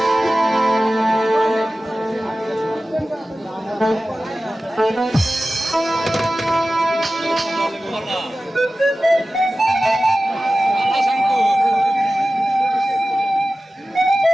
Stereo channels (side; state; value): both; normal; correlation 0.95